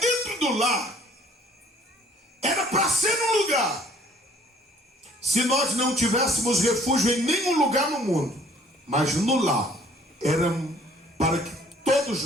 do lar era para ser um lugar, se nós não tivéssemos refúgio em nenhum lugar no mundo, mas no lar era para que todos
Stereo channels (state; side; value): normal; both; correlation 0.57